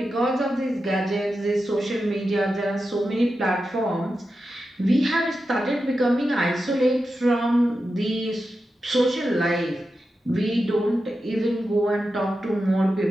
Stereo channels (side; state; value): both; normal; correlation 0.90